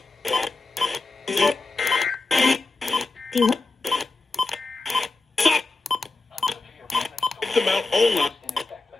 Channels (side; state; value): right; quieter; 3.5 dB